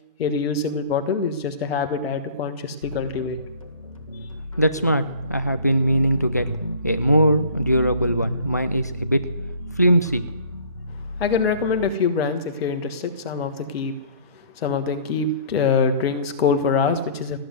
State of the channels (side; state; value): both; inverted; correlation -0.49